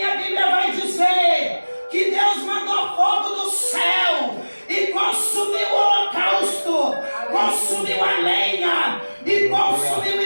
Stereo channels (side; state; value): both; inverted; correlation -1.00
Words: Bíblia vai dizer que Deus mandou fogo do céu e consumiu o holocausto, consumiu a lenha e consumiu